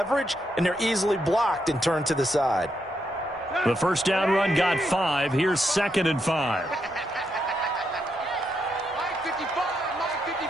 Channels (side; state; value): both; normal; correlation 0.80